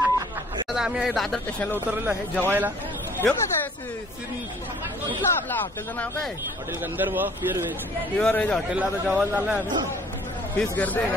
आम्ही दादर स्टेशनला उतरलेलो आहे जेवायला. येऊ का कुठला आपला हॉटेलचं नाव काय? हॉटेल गंधर्व प्युअर व्हेज हॉटेलला आता जेवायला चाललंय आम्ही. फीस गर्दी आहे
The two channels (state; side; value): normal; both; correlation 0.55